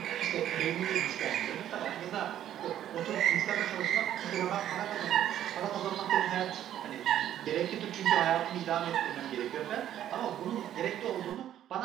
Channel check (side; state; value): left; quieter; 11.3 dB